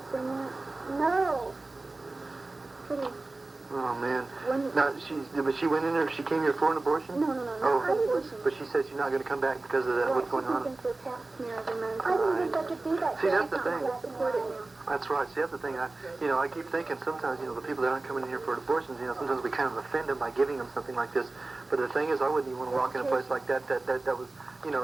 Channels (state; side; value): quieter; left; 3.2 dB